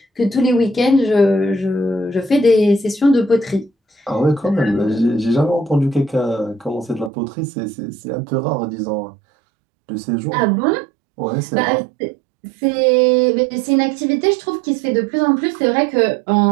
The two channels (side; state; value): left; drops out; at 7.1 s